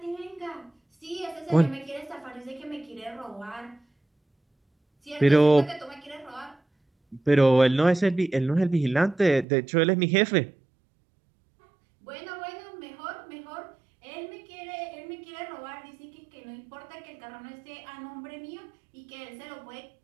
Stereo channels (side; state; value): left; drops out; at 9.5 s